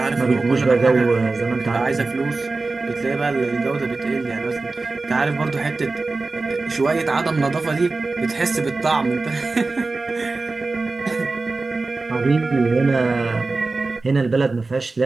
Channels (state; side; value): quieter; left; 3.6 dB